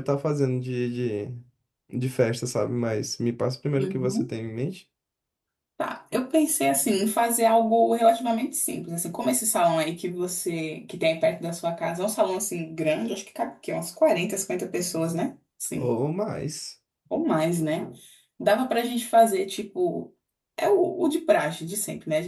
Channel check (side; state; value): both; identical; correlation 1.00